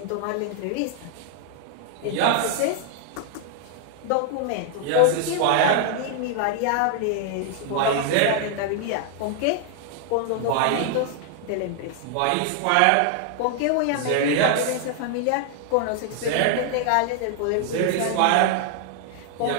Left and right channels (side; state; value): both; different; correlation 0.00